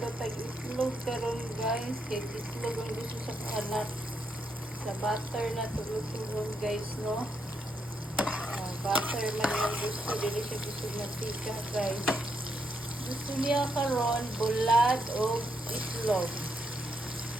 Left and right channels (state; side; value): normal; both; correlation 0.79